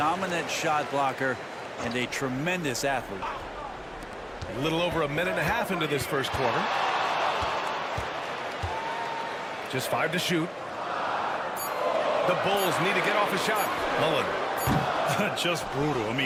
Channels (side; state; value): both; identical; correlation 1.00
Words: shot blocker and a tremendous athlete. A little over a minute and a half into this first quarter. Just 5 to shoot. The Bulls need to get off a shot. Mullen. Just brutal. I